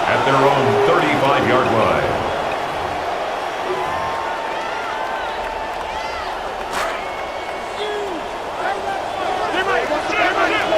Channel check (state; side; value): identical; both; correlation 1.00